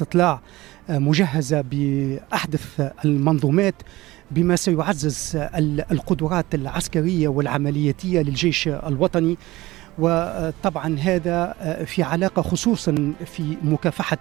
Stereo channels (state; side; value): quieter; left; 18.8 dB